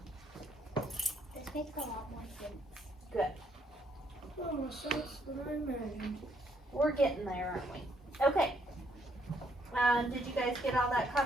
This makes a lot more sense. Good. Oh, so it's what I imagined. We're getting there, aren't we? Okay. Did you guys get all that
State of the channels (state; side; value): normal; both; correlation 0.70